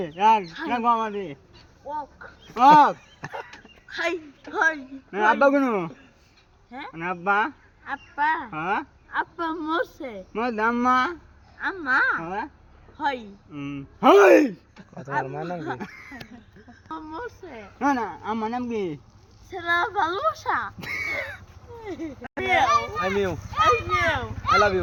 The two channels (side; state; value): both; identical; correlation 1.00